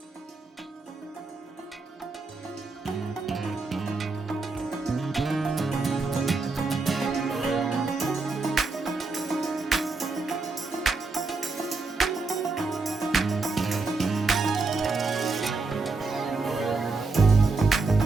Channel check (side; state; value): left; quieter; 3.9 dB